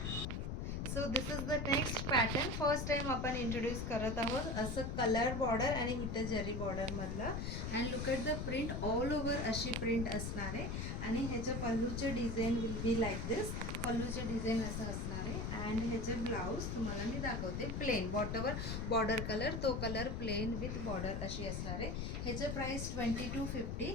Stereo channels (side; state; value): left; noise; rumble, 2 dB below the sound